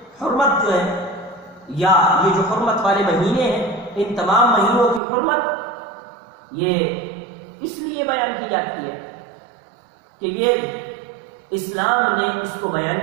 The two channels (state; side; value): drops out; left; at 5.0 s